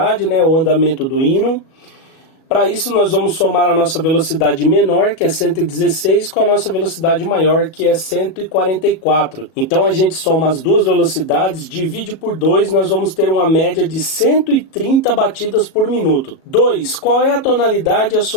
né, o andamento do hino? Para isso nós vamos somar a nossa velocidade menor, que é 116, com a nossa velocidade maior, que é 144. Então a gente soma as duas velocidades, divide por 2, nós vamos ter uma média de 130 batidas por minuto. 2. Qual é a tonalidade e a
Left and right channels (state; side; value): late; right; 37 ms